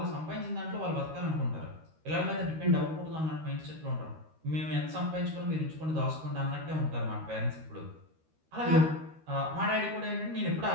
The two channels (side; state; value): left; late; 13 ms